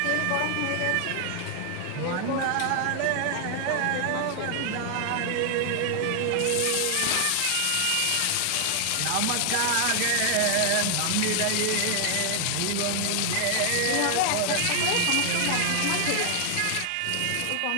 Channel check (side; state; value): both; different; correlation 0.00